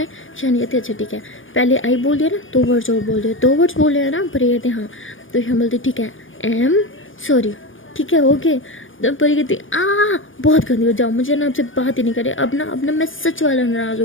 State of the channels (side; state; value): right; late; 0.57 ms